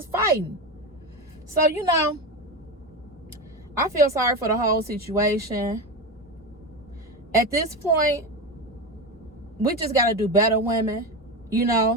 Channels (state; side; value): normal; both; correlation 0.19